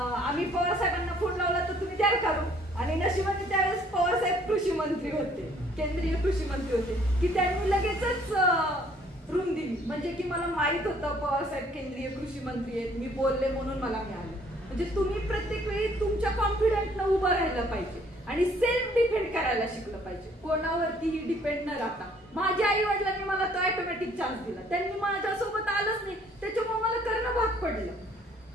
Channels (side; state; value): both; normal; correlation 0.60